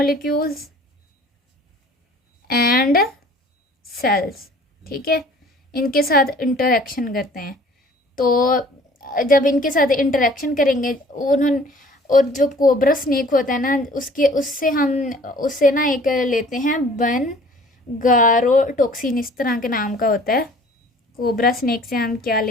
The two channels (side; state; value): both; normal; correlation 0.51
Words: and cells, ठीक है। इनके साथ इंटरेक्शन करते हैं। तो जब इनके साथ इंटरेक्शन करेंगे उन्होंने, और जो कोबरा स्नेक होता है ना, उससे ना एक लेते हैं गारोटोक्सिन, इस तरह के नाम का होता है। कोबरा स्नेक से हम क्या